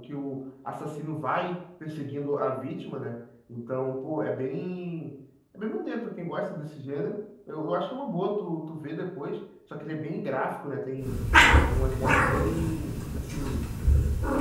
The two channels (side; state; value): both; identical; correlation 1.00